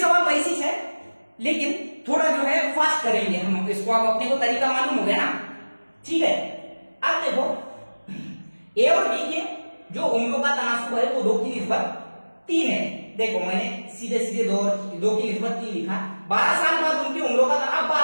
वैसे ही है, लेकिन थोड़ा जो है फास्ट करेंगे हम इसको। अब अपने को तरीका मालूम हो गया ना। ठीक है, अब देखो ए और बी के जो उम्रों का तनासुब है वो 2 की निस्बत 3 है। देखो मैंने सीधे सीधे 2 की निस्बत 3 लिखा। 12 साल बाद उनकी उम्रों का अब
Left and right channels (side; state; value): both; inverted; correlation -1.00